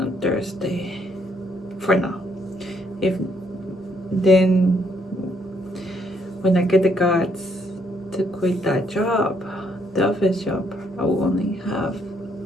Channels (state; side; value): normal; both; correlation 0.70